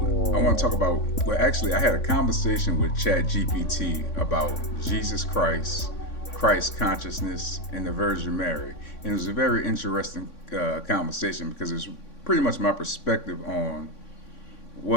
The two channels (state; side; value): late; right; 3.6 ms